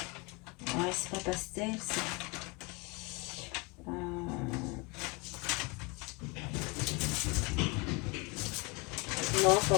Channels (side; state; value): right; quieter; 27.8 dB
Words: Ouais, c'est pas pastel, c'est... Non, pas